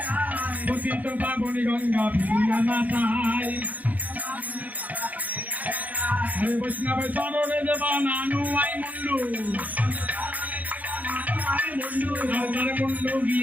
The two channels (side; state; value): left; late; 0.077 ms